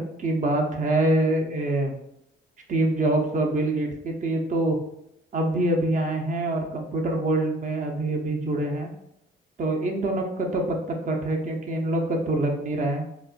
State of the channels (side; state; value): both; normal; correlation 0.54